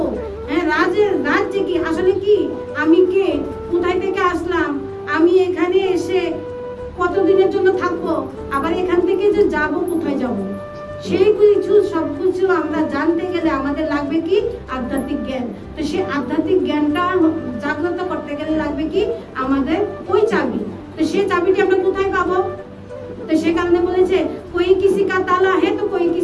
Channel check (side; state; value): both; identical; correlation 1.00